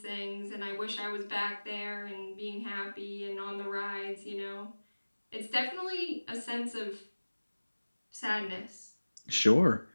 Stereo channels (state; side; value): inverted; both; correlation -1.00